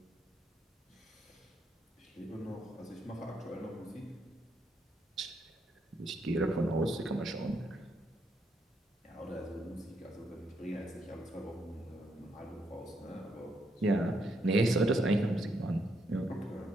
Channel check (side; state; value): both; normal; correlation 0.77